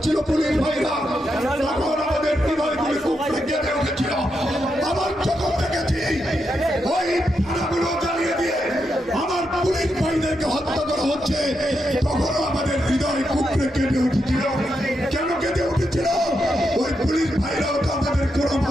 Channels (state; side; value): normal; both; correlation 0.84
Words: পুলিশ ভাইরা, তখন আমাদের হৃদয়গুলো কুকড়ে কেঁদে উঠেছিল। আমার চোখে দেখেছি ওই থানাগুলো জ্বালিয়ে দিয়ে আমার পুলিশ ভাইদেরকে হত্যা করা হচ্ছে, তখনও আমাদের হৃদয় কুকড়ে কেঁদে উঠেছিল। কেন কেঁদে উঠেছিল? ওই পুলিশ ভাইরাও তো আমাদের কোনো